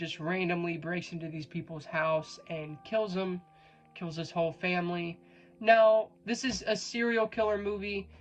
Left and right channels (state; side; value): identical; both; correlation 1.00